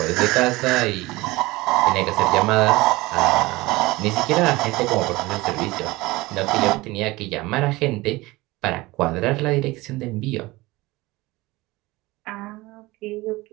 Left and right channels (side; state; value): left; quieter; 20.8 dB